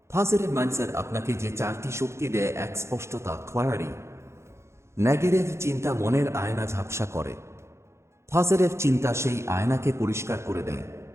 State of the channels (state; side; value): late; left; 0.13 ms